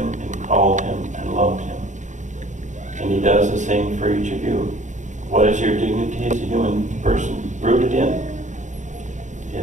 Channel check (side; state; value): left; late; 0.35 ms